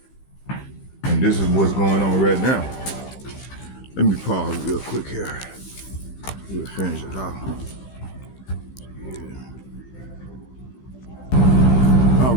And this is what's going on right now. Let me pause real quick here. We'll finish it off. Yeah. All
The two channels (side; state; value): right; late; 15 ms